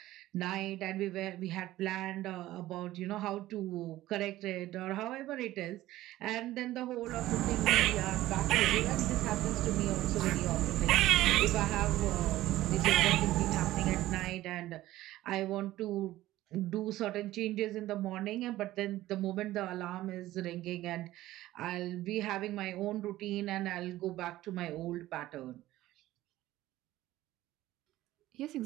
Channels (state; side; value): quieter; left; 15.7 dB